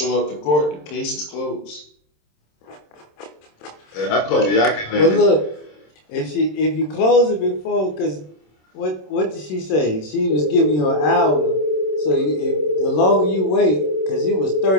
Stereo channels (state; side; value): late; right; 27 ms